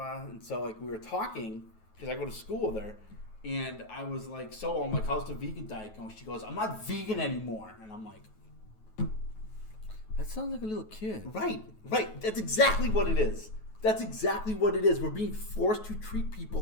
And so, we were talking, because I go to school with her, and I was like, I'm like, how's the vegan diet going? She goes, I'm not vegan anymore. And I'm like, that sounds like a little kid. Right. That's exactly what it is. We're being forced to treat people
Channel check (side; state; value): right; late; 9.3 ms